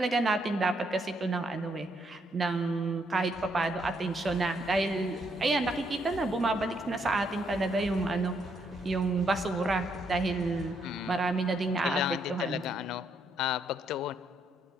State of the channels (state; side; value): normal; both; correlation 0.74